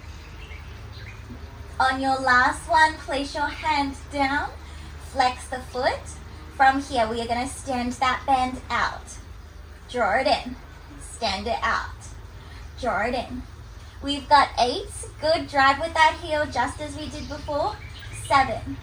On your last one, place your hands down, flex the foot. From here, we are going to stand that band out. Draw it in. Stand it out. Draw it in. We've got 8. Good. Drive with that heel just as we did before. 7.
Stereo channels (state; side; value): identical; both; correlation 1.00